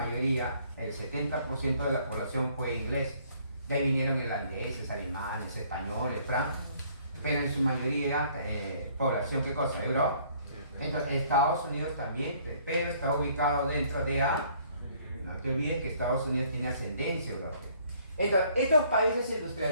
el 70% de la población fue inglés. De ahí vinieron irlandeses, alemanes, españoles, francos, pero en su mayoría población, ¿qué cosa? Europa. Entonces, Estados Unidos también, pero está ubicado dentro de A. No te olvides que Estados Unidos tiene ascendencia europea. Entonces, estos países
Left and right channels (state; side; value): inverted; both; correlation -0.61